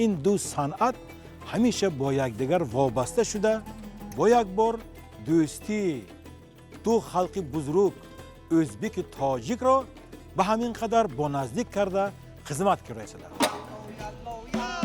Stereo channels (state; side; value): identical; both; correlation 1.00